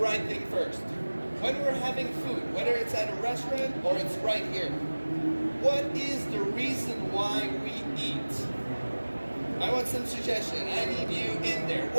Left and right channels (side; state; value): both; inverted; correlation -1.00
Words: thing first. When we're having food, whether it's at a restaurant or it's right here, what is the reason why we eat? I want some suggestion. I need you in there.